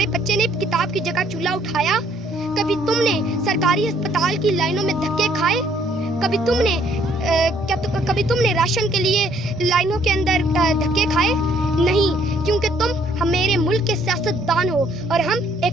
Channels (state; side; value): normal; both; correlation 0.64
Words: बच्चे ने किताब की जगह चूल्हा उठाया, कभी तुमने सरकारी अस्पताल की लाइनों में धक्के खाए, कभी तुमने राशन के लिए लाइनों के अंदर धक्के खाए? नहीं, क्योंकि तुम मेरे मुल्क के सियासतदान हो और हम एक